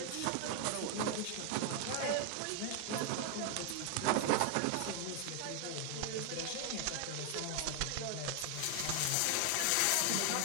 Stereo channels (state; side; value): different; both; correlation 0.00